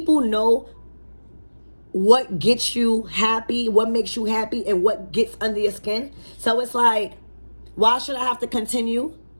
know what gets you happy, what makes you happy, and what gets under your skin. So it's like, why should I have to continue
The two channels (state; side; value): inverted; both; correlation -1.00